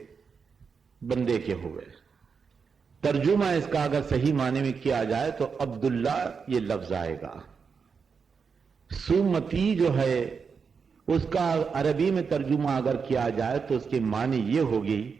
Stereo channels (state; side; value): quieter; left; 5.7 dB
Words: بندے کے ہوئے۔ ترجمہ اس کا اگر صحیح معنی میں کیا جائے تو عبداللہ یہ لفظ آئے گا۔ سومتی جو ہے اس کا عربی میں ترجمہ اگر کیا جائے تو اس کی معنی یہ ہوگی